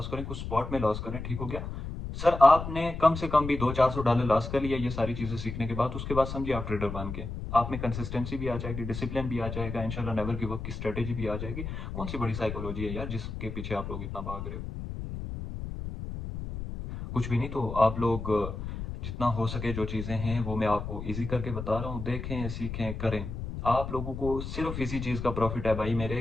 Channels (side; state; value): left; noise; rumble, 7 dB below the sound